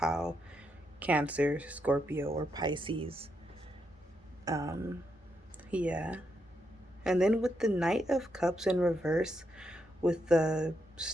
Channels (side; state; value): both; normal; correlation 0.81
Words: Cancer, Scorpio, or Pisces. Yeah. And then with the Knight of Cups in reverse, with the